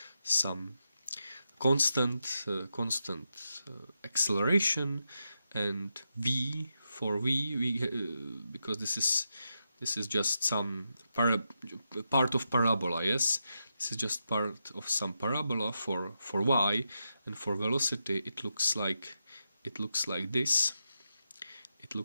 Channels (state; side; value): inverted; both; correlation -0.86